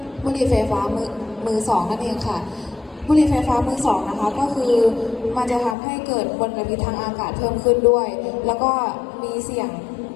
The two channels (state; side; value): drops out; right; at 5.8 s